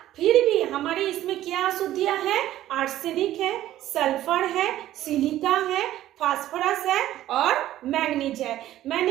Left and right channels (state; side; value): quieter; left; 13.6 dB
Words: फिर भी हमारे इसमें क्या अशुद्धियां है, आर्सेनिक है, सल्फर है, सिलिका है, फास्फोरस है और मैग्नीज है।